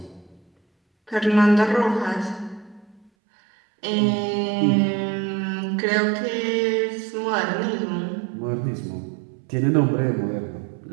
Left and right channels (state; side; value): drops out; left; at 3.1 s